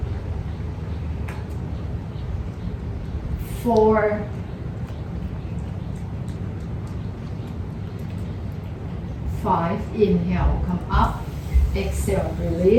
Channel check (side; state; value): both; identical; correlation 1.00